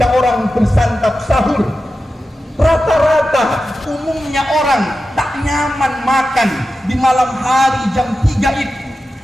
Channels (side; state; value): both; normal; correlation 0.92